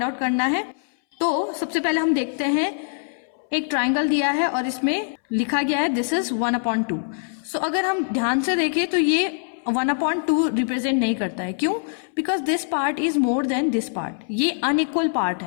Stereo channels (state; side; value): silent; right; 63 dB below the other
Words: आउट करना है। तो सबसे पहले हम देखते हैं, एक ट्राइंगल दिया है और इसमें लिखा गया है दिस इज 1/2। सो अगर हम ध्यान से देखें तो ये 1/2 रिप्रेजेंट नहीं करता है। क्यों? Because this part is more than this part. ये अनइक्वल पार्ट